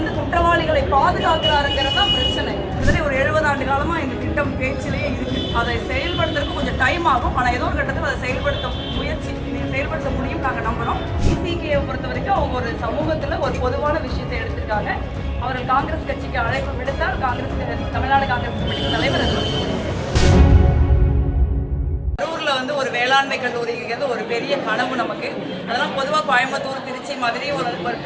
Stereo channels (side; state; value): both; identical; correlation 1.00